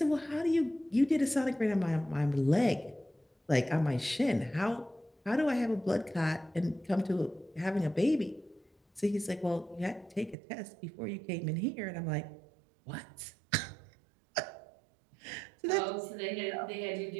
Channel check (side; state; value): left; drops out; at 10.4 s